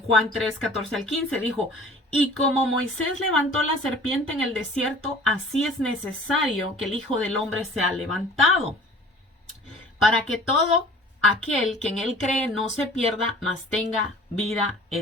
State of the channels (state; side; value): normal; both; correlation 0.47